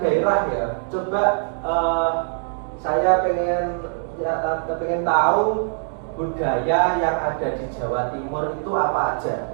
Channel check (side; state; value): left; silent; digital silence